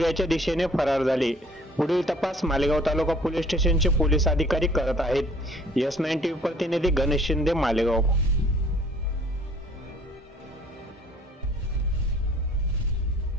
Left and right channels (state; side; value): normal; both; correlation 0.55